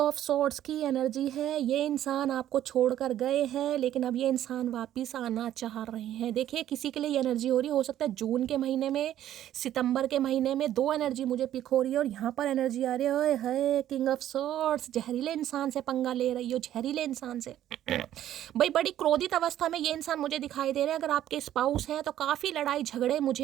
स्वॉर्ड्स की एनर्जी है। ये इंसान आपको छोड़कर गए हैं, लेकिन अब ये इंसान वापस आना चाह रहे हैं। देखिए किसी के लिए ये एनर्जी हो रही है, हो सकता है जून के महीने में, सितंबर के महीने में। 2 एनर्जी मुझे पिक हो रही है, और यहाँ पर एनर्जी आ रही है किंग ऑफ स्वॉर्ड्स। जहरीले इंसान से पंगा ले रही हो, जहरीले इंसान से भाई। बड़ी क्रोधित अवस्था में ये इंसान मुझे दिखाई दे रहे हैं। अगर आपके स्पाउस हैं तो काफ़ी लड़ाई झगड़े मुझे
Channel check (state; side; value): quieter; left; 12.0 dB